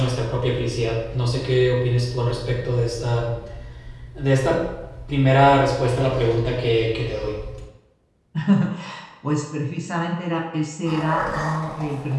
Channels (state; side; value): identical; both; correlation 1.00